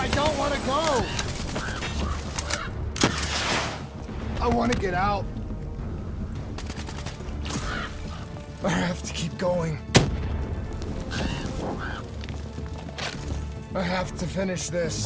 don't want to go. I want to get out. I have to keep going. I have to finish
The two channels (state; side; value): identical; both; correlation 1.00